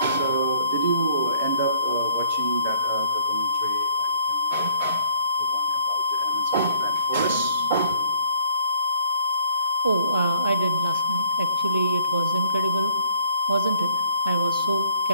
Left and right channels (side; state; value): both; inverted; correlation -0.62